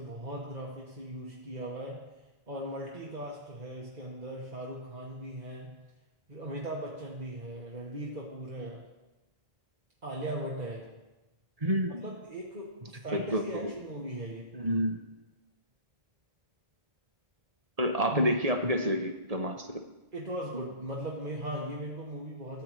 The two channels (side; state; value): left; late; 1.7 ms